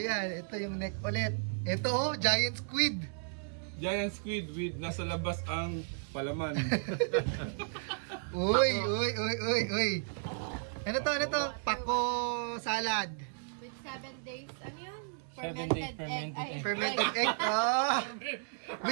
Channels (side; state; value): left; silent; 55 dB below the other